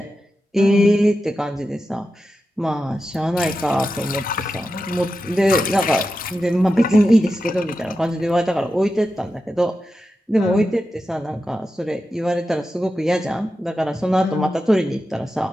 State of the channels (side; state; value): both; normal; correlation 0.91